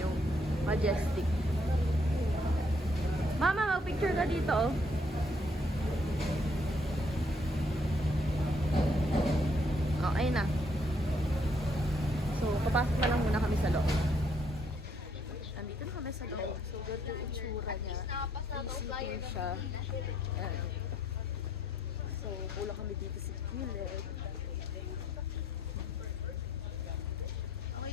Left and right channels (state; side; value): normal; both; correlation 0.69